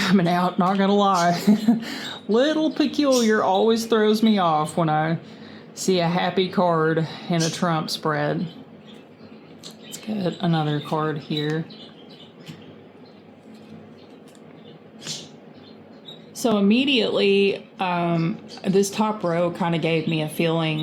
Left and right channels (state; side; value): identical; both; correlation 1.00